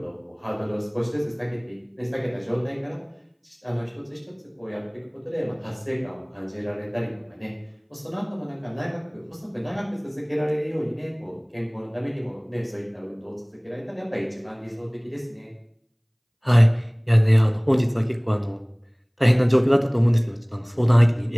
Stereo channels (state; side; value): identical; both; correlation 1.00